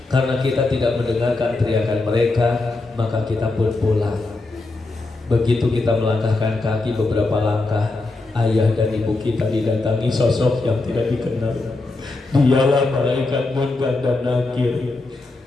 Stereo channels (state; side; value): quieter; right; 3.2 dB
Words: Karena kita tidak mendengarkan teriakan mereka, maka kita pun pulang. Begitu kita melangkahkan kaki beberapa langkah, ayah dan ibu kita didatangi sosok yang tidak dikenal. Dialah malaikat munkar dan nakir.